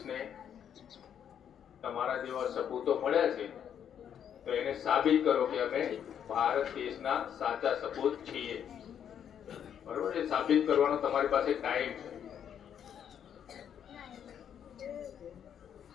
તમારા જેવા સપૂતો મળ્યા છે તો એને સાબિત કરો કે અમે ભારત દેશના સાચા સપૂત છીએ. બરોબર. એ સાબિત કરવાનો તમારી પાસે ટાઈમ છે.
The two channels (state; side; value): quieter; right; 8.8 dB